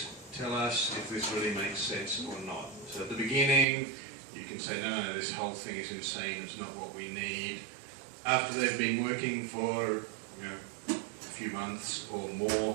tell us if this really makes sense or not. So at the beginning you can say, no, this whole thing is insane, it's not what we need. After they've been working for a few months or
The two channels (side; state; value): left; drops out; at 3.7 s